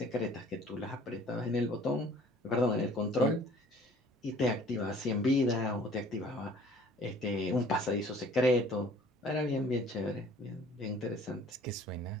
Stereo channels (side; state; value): both; normal; correlation 0.52